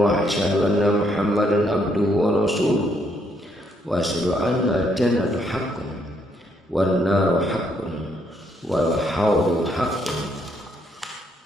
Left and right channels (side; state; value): both; normal; correlation 0.72